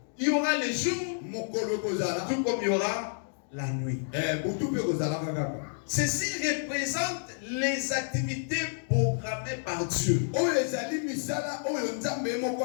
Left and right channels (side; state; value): right; silent; digital silence